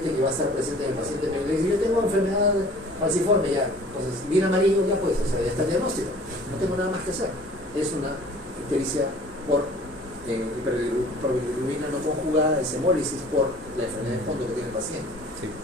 que va a estar presente en el paciente. Me dice, yo tengo enfermedad falciforme ya, entonces bien amarillo ya pues, o sea, ya está el diagnóstico, no tengo nada más que hacer. Es una ictericia por hiperbilirrubina no conjugada, es hemólisis por la enfermedad de fondo que tiene el paciente. Sí.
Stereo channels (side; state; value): both; normal; correlation 0.49